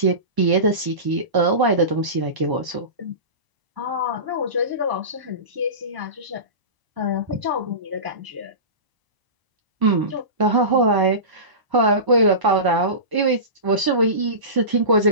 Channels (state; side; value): late; left; 1.0 ms